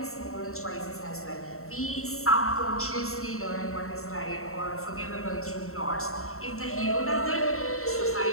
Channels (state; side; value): late; right; 0.63 ms